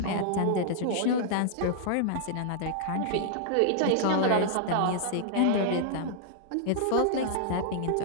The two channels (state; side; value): different; both; correlation -0.01